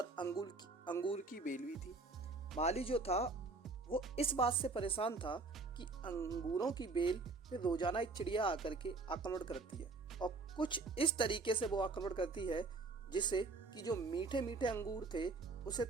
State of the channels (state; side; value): quieter; left; 3.7 dB